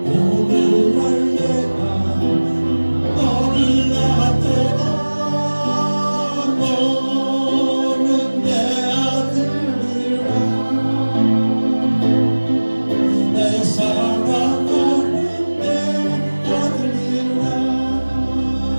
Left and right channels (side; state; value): both; inverted; correlation -1.00